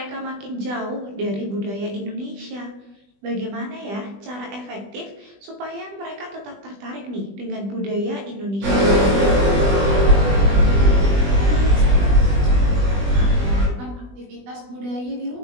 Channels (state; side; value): late; left; 20 ms